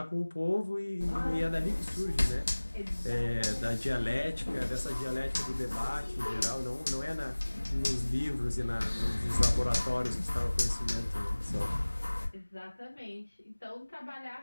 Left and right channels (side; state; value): both; inverted; correlation -1.00